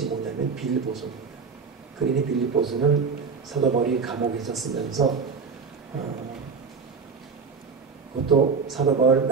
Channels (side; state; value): left; quieter; 5.2 dB